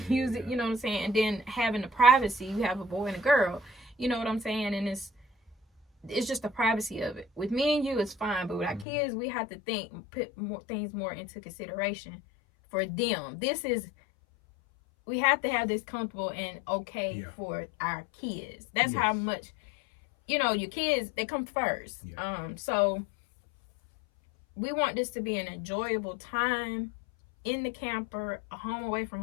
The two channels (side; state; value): right; drops out; at 8.8 s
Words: use it, you know what I'm saying? And then having the privacy, you have a boy and a girl, you know what I'm saying? And it's just the privacy of it. With me and you, it's fine, but with our kids, we have to put things more into consideration for them. We have to have this comfortable and okay for our kids. That's how much, you know, your kids, they come first. So we want this to be an enjoyable time in the camper, a home away from